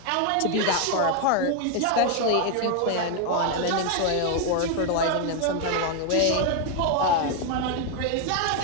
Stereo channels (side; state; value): both; different; correlation 0.01